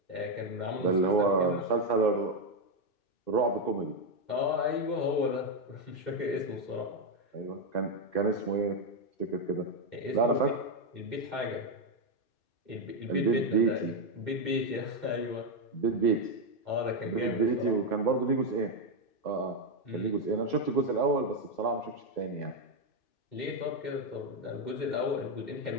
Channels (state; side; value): late; right; 2.6 ms